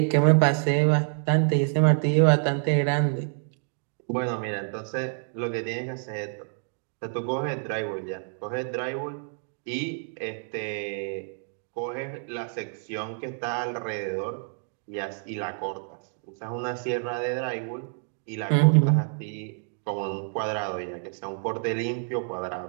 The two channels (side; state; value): left; silent; 60 dB below the other